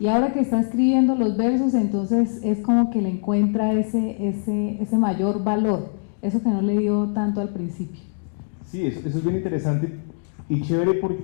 ahora que está escribiendo los versos, entonces es como que le encuentra ese mayor valor, eso que no le dio tanto al principio. Sí, eso es bien interesante y chévere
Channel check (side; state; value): right; silent; digital silence